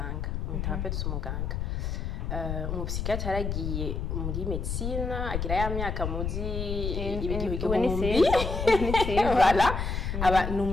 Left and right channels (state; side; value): noise; left; rumble, 2 dB below the sound